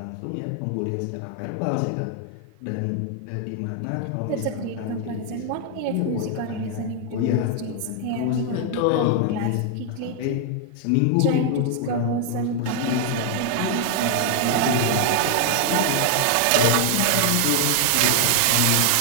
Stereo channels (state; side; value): different; both; correlation 0.00